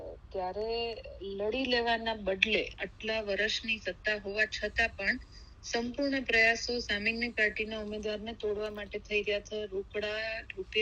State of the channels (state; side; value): identical; both; correlation 1.00